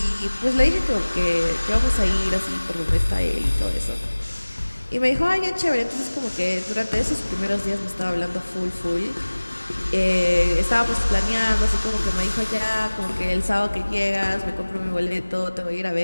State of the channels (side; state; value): both; inverted; correlation -1.00